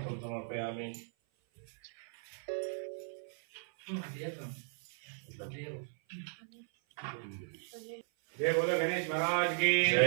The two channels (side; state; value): left; silent; 53 dB below the other